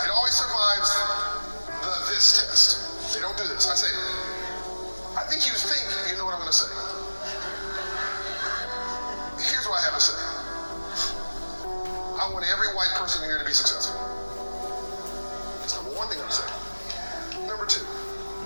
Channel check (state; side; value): inverted; both; correlation -1.00